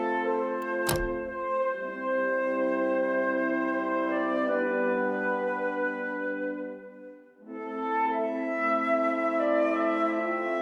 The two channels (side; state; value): both; identical; correlation 1.00